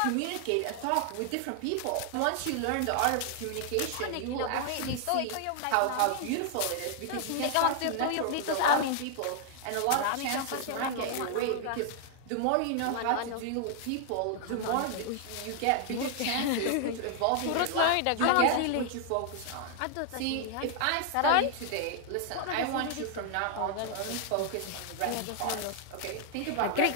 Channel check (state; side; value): different; both; correlation 0.00